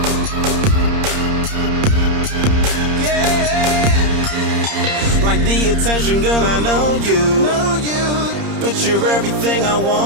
the attention, girl, I know you. But you're everything I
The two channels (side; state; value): left; late; 30 ms